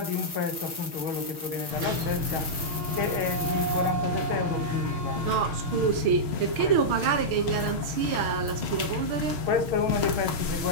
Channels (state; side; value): late; left; 6.4 ms